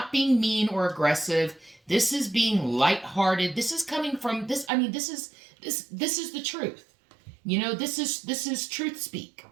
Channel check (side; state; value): left; drops out; at 4.7 s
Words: being mean or aggressive. This is being lighthearted. This is coming from this. I mean, this is the truth. This is truth speak.